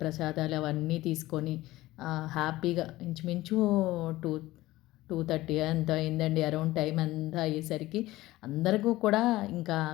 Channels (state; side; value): quieter; right; 17.4 dB